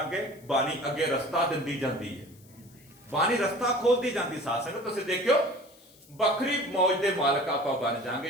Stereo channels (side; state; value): left; noise; hiss, 27 dB below the sound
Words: ਬਾਣੀ ਅੱਗੇ ਰਸਤਾ ਦਿੰਦੀ ਜਾਂਦੀ ਹੈ, ਬਾਣੀ ਰਸਤਾ ਖੋਲਦੀ ਜਾਂਦੀ ਸਾਧ ਸੰਗਤ। ਤੁਸੀਂ ਦੇਖਿਓ ਵੱਖਰੀ ਮੌਜ ਦੇ ਮਾਲਕ ਆਪਾਂ ਬਣ ਜਾਾਂਗੇ